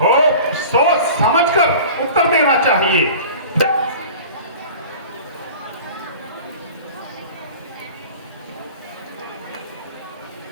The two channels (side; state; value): both; inverted; correlation -0.40